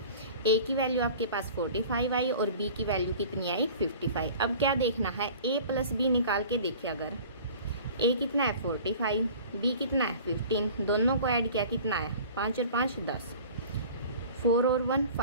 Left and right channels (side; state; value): both; inverted; correlation -0.44